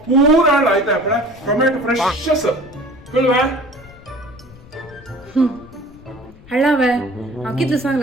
ಪೂರಾ ಆಯ್ತಾ ಅಪ್ಪಳ ಟೊಮೆಟೊ ಫ್ರೆಶಸ್ ಕಳ್ವಾ हळावे हांव कितले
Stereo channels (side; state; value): left; noise; rumble, 21 dB below the sound